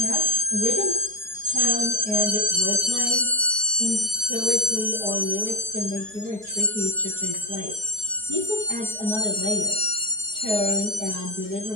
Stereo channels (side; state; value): left; late; 4.7 ms